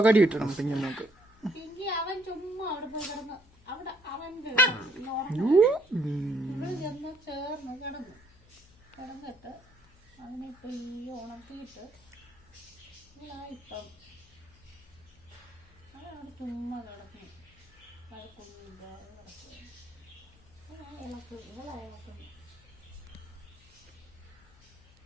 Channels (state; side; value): noise; left; hum, 27 dB below the sound